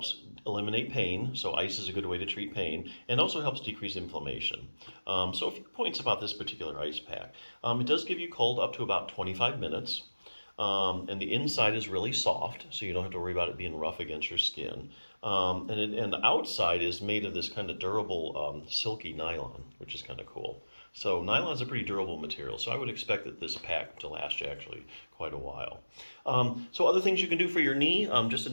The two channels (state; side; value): inverted; both; correlation -1.00